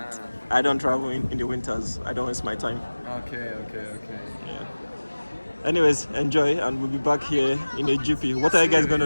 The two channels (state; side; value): inverted; both; correlation -1.00